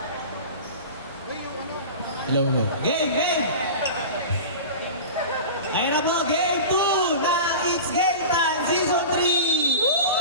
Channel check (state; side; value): inverted; both; correlation -0.32